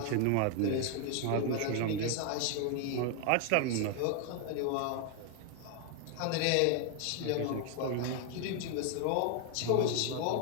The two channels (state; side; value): different; both; correlation 0.00